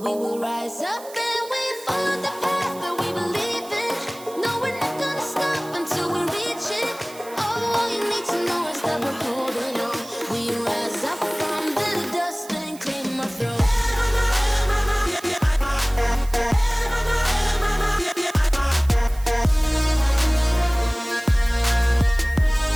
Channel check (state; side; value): noise; right; hiss, 19 dB below the sound